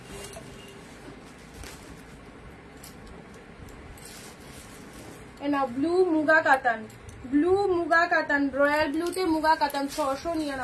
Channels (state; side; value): identical; both; correlation 1.00